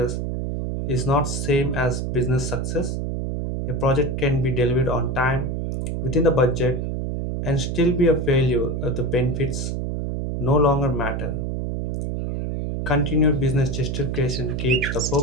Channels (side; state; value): right; noise; hum, 2 dB below the sound